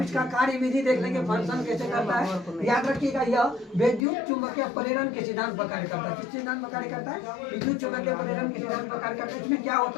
इसका कार्य विधि देख लेंगे, फंक्शन कैसे करता है। याद रखिएगा, यह विद्युत चुंबकीय प्रेरण के सिद्धांत पर कार्य करता है। किस सिद्धांत पर कार्य करता है? विद्युत चुंबकीय प्रेरण के सिद्धांत पर कार्य करता है। इसमें क्या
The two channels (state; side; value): drops out; right; at 4.0 s